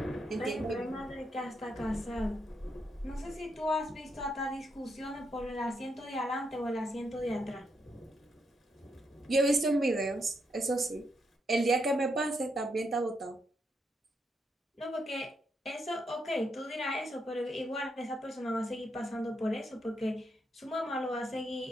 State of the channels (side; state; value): both; normal; correlation 0.79